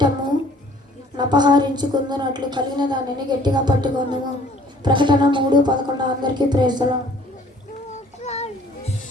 నపహరించుకుందునట్లు కలిగిన దానిని గట్టిగా పట్టుకుందుము. ప్రకటన 3:11 అందరికీ ప్రైజ్లా.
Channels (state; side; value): normal; both; correlation 0.55